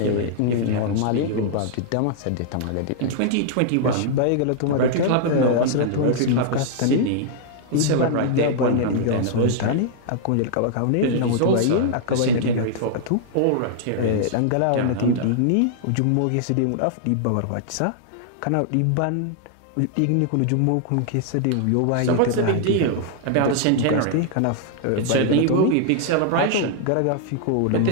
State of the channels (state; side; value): different; both; correlation -0.01